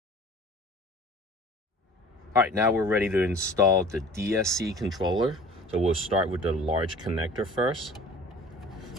All right, now we're ready to install the DSC controller. So we'll start with the large connector first.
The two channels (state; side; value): normal; both; correlation 0.46